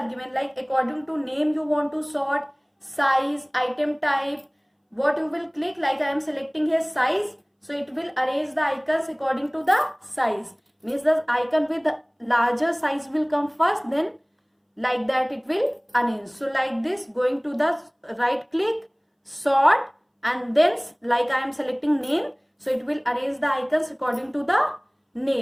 given, like according to name you want to sort, size, item type, what you will click, like I am selecting here size, so it will arrange the icons according to the size. Means the icon with the larger size will come first, then like that it will arrange. So like this, going to the right click, sort, and then like I am selecting name, so it will arrange the icons according to the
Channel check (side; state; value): both; identical; correlation 1.00